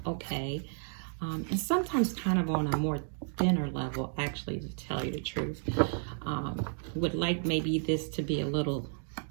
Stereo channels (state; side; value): silent; left; 56 dB below the other